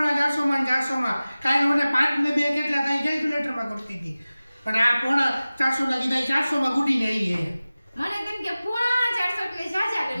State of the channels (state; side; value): inverted; both; correlation -0.97